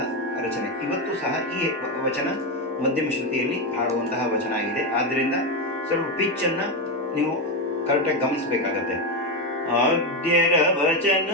ರಚನೆ. ಇವತ್ತು ಸಹ ಈ ವಚನ ಮಧ್ಯಮ ಶ್ರುತಿಯಲ್ಲಿ ಹಾಡುವಂತಹ ವಚನ ಆಗಿದೆ. ಆದ್ದರಿಂದ ಸ್ವಲ್ಪ ಪಿಚ್ಚನ್ನು ನೀವು ಕರೆಕ್ಟಾಗಿ ಗಮನಿಸಬೇಕಾಗತ್ತೆ. ಆದ್ಯರ ವಚನ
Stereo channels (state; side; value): normal; both; correlation 0.10